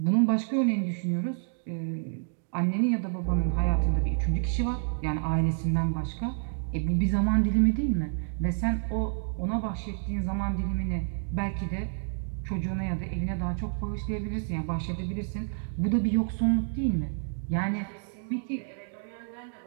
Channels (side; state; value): left; silent; digital silence